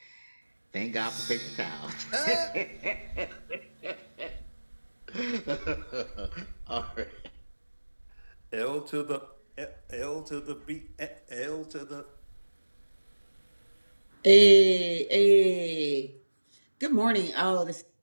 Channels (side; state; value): both; inverted; correlation -1.00